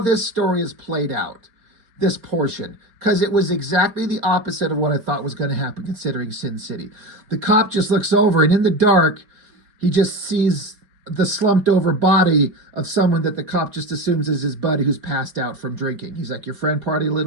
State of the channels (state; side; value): late; left; 4.3 ms